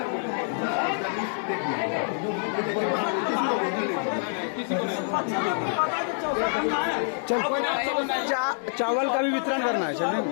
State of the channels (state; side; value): silent; right; 60 dB below the other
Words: किसी को नहीं। चल चावल का भी वितरण करना है। चलिए